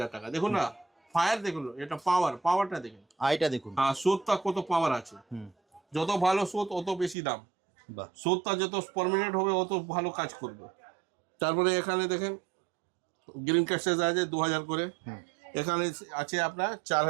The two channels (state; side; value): drops out; left; at 7.2 s